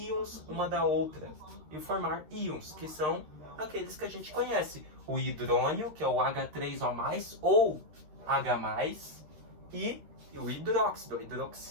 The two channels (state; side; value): late; left; 13 ms